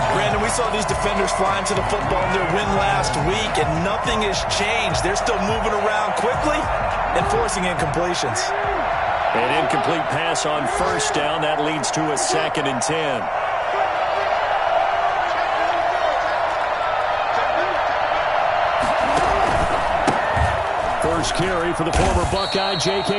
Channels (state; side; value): identical; both; correlation 1.00